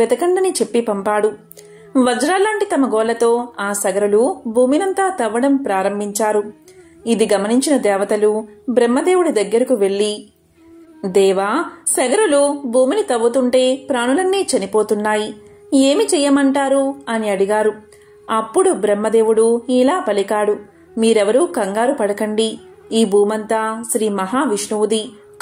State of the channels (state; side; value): identical; both; correlation 1.00